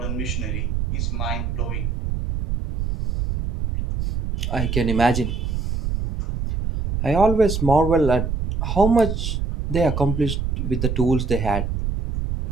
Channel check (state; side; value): noise; right; rumble, 2 dB below the sound